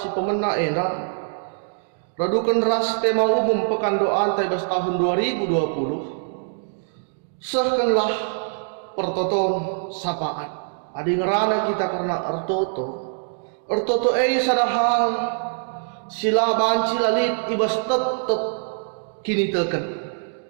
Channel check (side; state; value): left; silent; digital silence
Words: pemena ena radukan ras tema umum pekan doa anta ibas tahun 2020 sahkanlah pertoton sapaat adi ngerana kita karena ertoto sadahal sila banci lalit ibas tetep kini teken